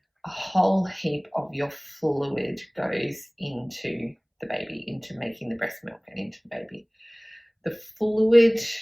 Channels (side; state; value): both; identical; correlation 1.00